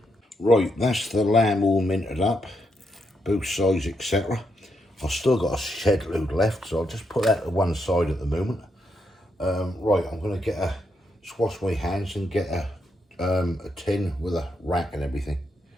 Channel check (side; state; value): both; normal; correlation 0.80